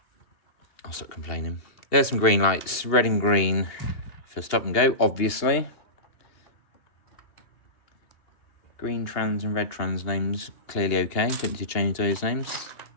I'll stop complaining. There's some green lights, red and green for stop and go, obviously. Green trans and red trans names, clearly okay. Don't need to change those names.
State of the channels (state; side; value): late; right; 2.8 ms